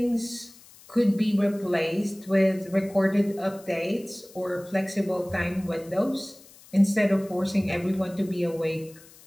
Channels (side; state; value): left; noise; hiss, 23 dB below the sound